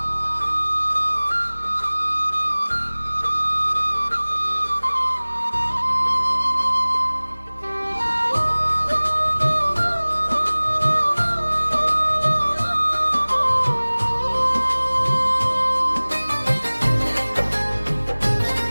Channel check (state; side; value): inverted; both; correlation -1.00